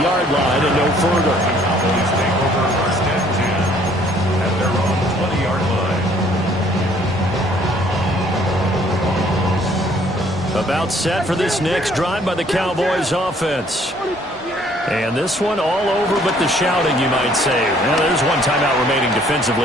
line and no further. Cowboys take over 1st and 10 at their own 20-yard line. About set for this next drive by the Cowboys offense. And this one all over but the shouting, you might say. Well, there's one timeout remaining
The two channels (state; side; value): normal; both; correlation 0.60